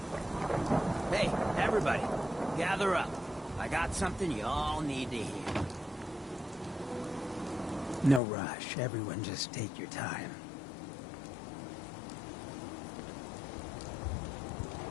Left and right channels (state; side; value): drops out; right; at 8.2 s